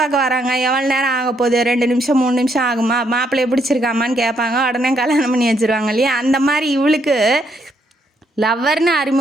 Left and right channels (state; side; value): normal; both; correlation 0.73